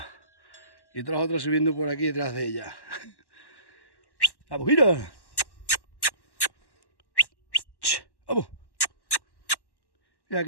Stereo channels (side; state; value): right; late; 1.1 ms